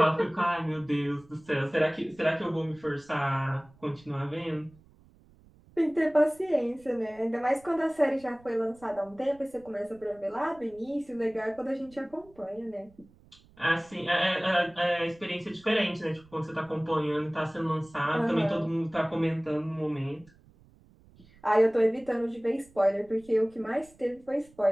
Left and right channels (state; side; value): noise; right; rumble, 27 dB below the sound